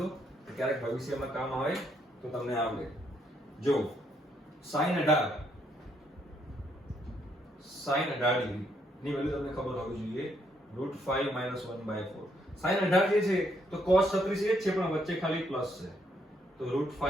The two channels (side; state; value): both; normal; correlation 0.73